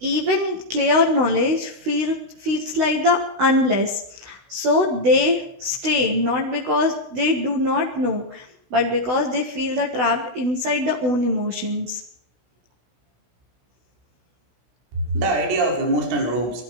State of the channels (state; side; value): late; left; 16 ms